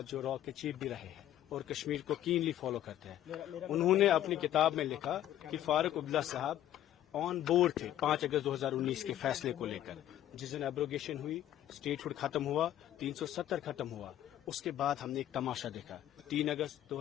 जो रॉ के चीफ भी रहे हैं और कश्मीर को कीनली फॉलो करते हैं, उन्होंने अपनी किताब में लिखा कि फारूक अब्दुल्ला साहब ऑन बोर्ड थे 5 अगस्त 2019 के फैसले को लेकर। जिस दिन एब्रोगेशन हुई, स्टेटहुड खत्म हुआ, 370 खत्म हुआ, उसके बाद हमने एक तमाशा देखा। 3 अगस्त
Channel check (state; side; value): quieter; right; 12.2 dB